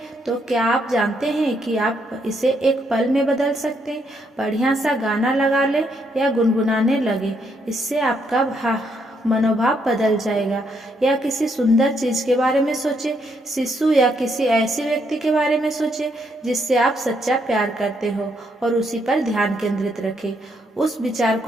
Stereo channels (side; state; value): both; normal; correlation 0.74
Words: तो क्या आप जानते हैं कि आप इसे एक पल में बदल सकते हैं? बढ़िया सा गाना लगा ले या गुनगुनाने लगे, इससे आपका मनोभाव बदल जाएगा। या किसी सुंदर चीज के बारे में सोचे, शिशु या किसी ऐसे व्यक्ति के बारे में सोचे जिससे आप सच्चा प्यार करते हो और उसी पर ध्यान केंद्रित रखें। उस विचार